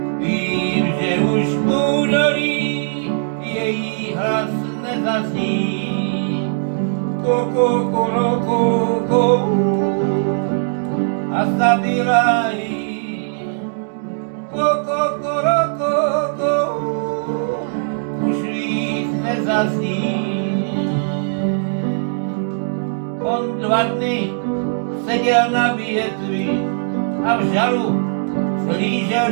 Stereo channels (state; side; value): silent; left; digital silence